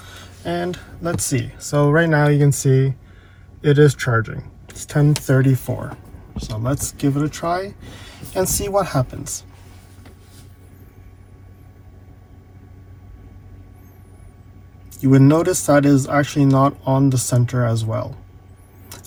And let's see. So right now you can see it is charging. It's 10:34. So let's give it a try and see what happens. You would notice that it is actually not on the center as well.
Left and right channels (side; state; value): both; identical; correlation 1.00